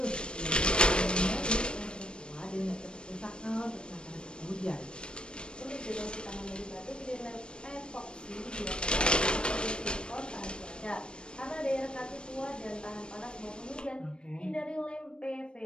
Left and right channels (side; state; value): right; late; 0.053 ms